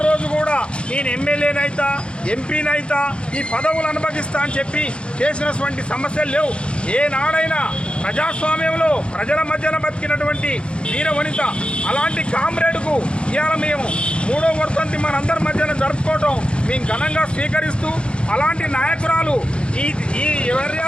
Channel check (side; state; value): right; late; 0.057 ms